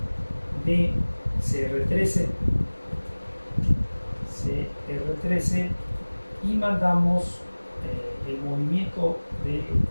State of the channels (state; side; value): inverted; both; correlation -1.00